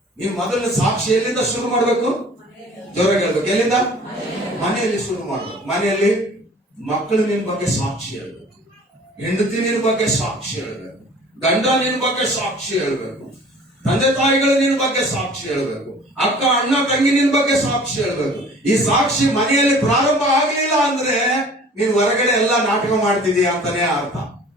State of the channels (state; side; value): normal; both; correlation 0.48